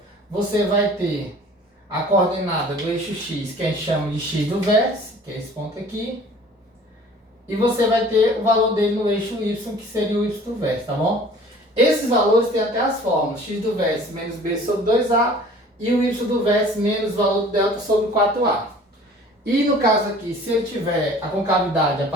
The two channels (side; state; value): both; normal; correlation 0.48